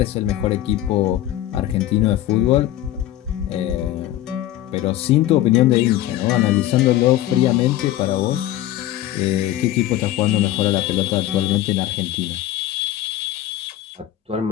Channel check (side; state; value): right; quieter; 13.6 dB